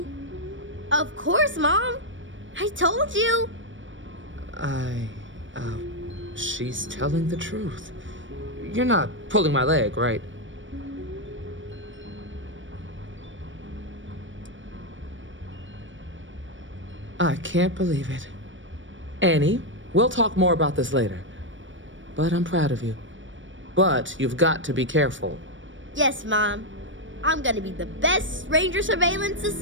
Of course, Mom. I told you. She's telling the truth. You're not pulling my leg, right? I can't believe it. Annie, we'll talk more about this later. But I'm proud of you. But you've got to be careful. Yes, Mom. I'm gonna be the best ranger surveillance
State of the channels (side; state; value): left; late; 0.56 ms